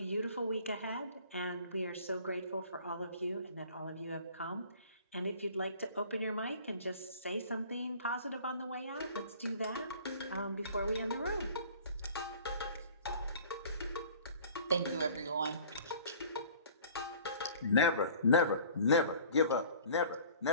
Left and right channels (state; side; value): inverted; both; correlation -0.48